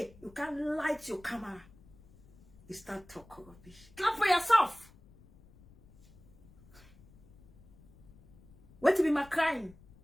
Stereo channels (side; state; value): left; noise; rumble, 25 dB below the sound